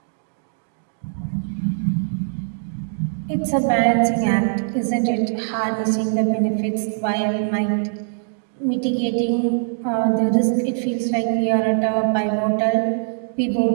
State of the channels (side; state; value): left; silent; digital silence